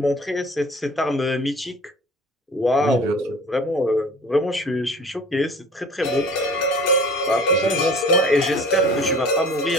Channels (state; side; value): normal; both; correlation 0.44